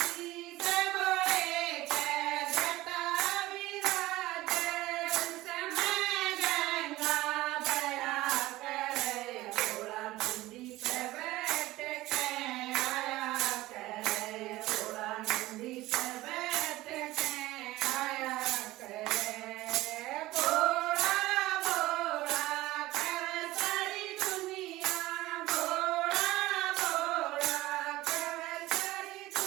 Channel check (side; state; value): left; quieter; 17.8 dB